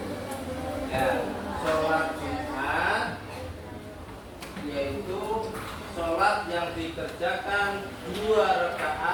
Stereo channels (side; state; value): both; identical; correlation 1.00